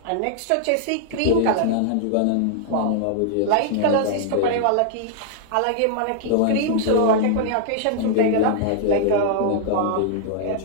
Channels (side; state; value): both; different; correlation -0.01